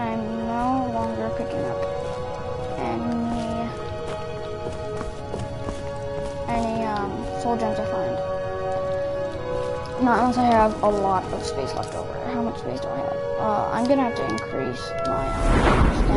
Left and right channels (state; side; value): identical; both; correlation 1.00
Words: I'm no longer picking up any soul gems I find. Not unless I have a lot of space left over. How much space do I have? I'm gonna have to increase my